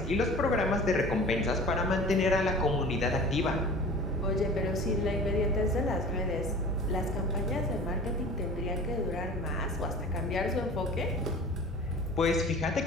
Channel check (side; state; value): both; normal; correlation 0.40